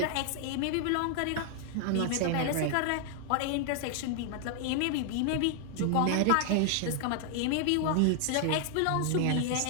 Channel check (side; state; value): both; different; correlation 0.00